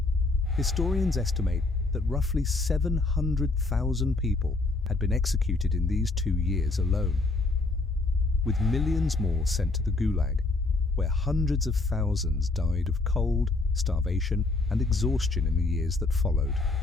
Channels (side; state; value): right; quieter; 3.3 dB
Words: historians estimate that roughly 700,000 people had been executed in these 2 years alone, with millions more sent to the Gulag, where hundreds of thousands died of cold, starvation, and exhaustion in the years that followed.